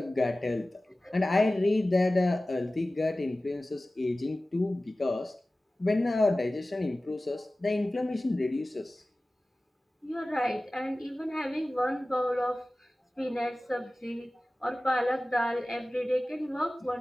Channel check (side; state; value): both; normal; correlation 0.97